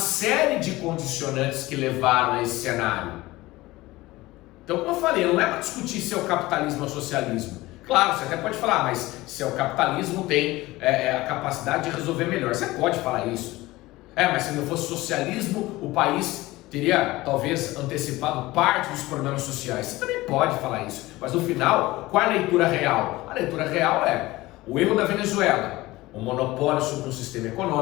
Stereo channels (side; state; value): right; quieter; 19.0 dB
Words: de condicionantes que levaram a esse cenário. Então, como eu falei, não é para discutir se é o capitalismo ou o socialismo. Claro, você até pode falar, mas se é o capitalismo tem a capacidade de resolver melhor. Você pode falar isso. Mas se não fosse socialismo, o país teria talvez antecipado parte dos problemas sociais. Você também pode falar isso. Mas no final, qual é a leitura real? A leitura real é o erro da Venezuela, o monopólio sobre um sistema